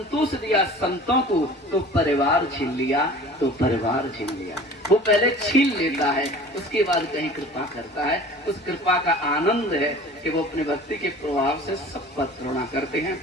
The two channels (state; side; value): normal; both; correlation 0.43